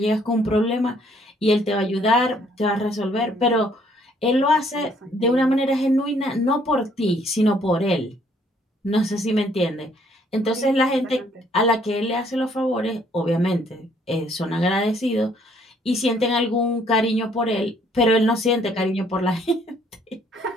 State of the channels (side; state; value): both; normal; correlation 0.64